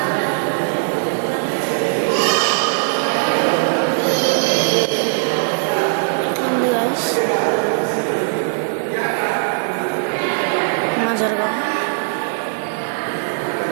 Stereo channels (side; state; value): left; silent; digital silence